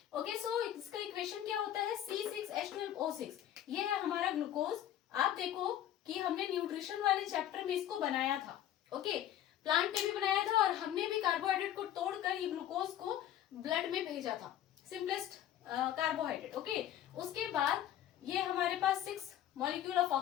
ओके, सो इसका इक्वेशन क्या होता है, C6H12O6। ये है हमारा ग्लूकोज। आप देखो कि हमने न्यूट्रिशन वाले चैप्टर में इसको बनाया था। ओके, प्लांट ने भी बनाया था और हमने भी कार्बोहाइड्रेट को तोड़कर ये ग्लूकोज को ब्लड में भेजा था, सिंपलेस्ट कार्बोहाइड्रेट। ओके, उसके बाद ये हमारे पास 6 मॉलिक्यूल ऑफ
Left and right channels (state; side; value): quieter; right; 11.6 dB